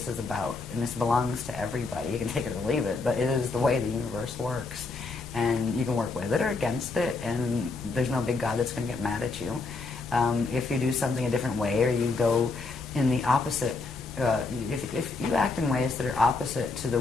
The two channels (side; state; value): right; quieter; 3.9 dB